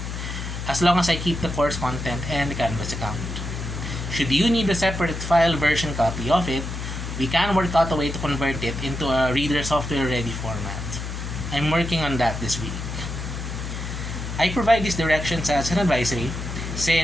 as long as I keep the course content and the Canvas account. Should you need a separate file version copy of it, we can work out a way to convert it into a reader software ready format. I'm working on that this week. I provide these directions as an advisory,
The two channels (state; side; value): noise; left; hum, 6 dB below the sound